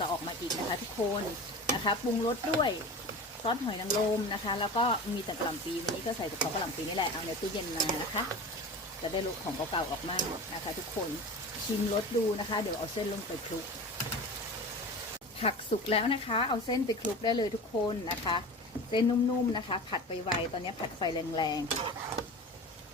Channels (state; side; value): normal; both; correlation 0.33